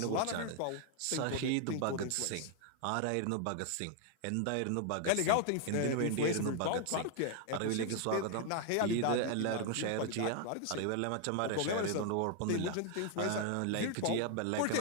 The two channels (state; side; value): different; both; correlation 0.00